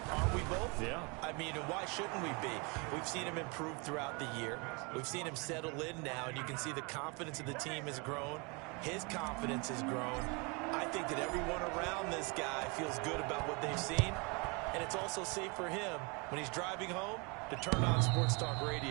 we both? Yeah. I mean, why shouldn't we be? We've seen him improve throughout the year. We've seen him settle in now, and you can see the confidence of the team has grown. His confidence has grown. I think that everyone around this guy feels good about what they've seen, and it's also safe for him when he's driving home to turn on Sports Talk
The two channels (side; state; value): left; quieter; 30.1 dB